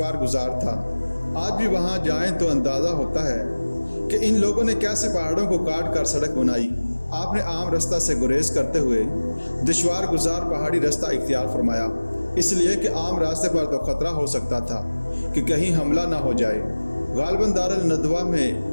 گزار تھا۔ آج بھی وہاں جائیں تو اندازہ ہوتا ہے کہ ان لوگوں نے کیسے پہاڑوں کو کاٹ کر سڑک بنائی۔ آپ نے عام راستہ سے گریز کرتے ہوئے دشوار گزار پہاڑی راستہ اختیار فرمایا، اس لیے کہ عام راستے پر تو خطرہ ہو سکتا تھا کہ کہیں حملہ نہ ہو جائے۔ غالباً دارالندوہ میں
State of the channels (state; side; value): inverted; both; correlation -1.00